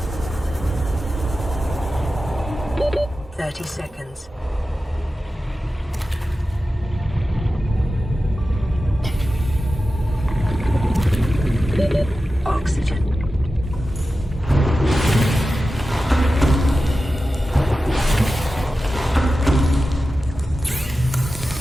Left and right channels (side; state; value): both; normal; correlation 0.93